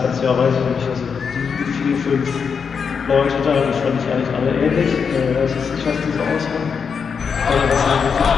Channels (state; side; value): quieter; right; 6.2 dB